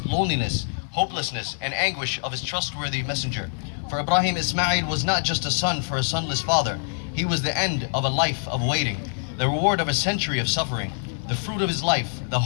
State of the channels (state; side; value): silent; right; digital silence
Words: loneliness, hopelessness and anguish of his trustworthy messenger. For Ibrahim, Ismail was not just a son for a sonless father. He was the end of a life of waiting, the reward of a century of suffering, the fruit of his life, the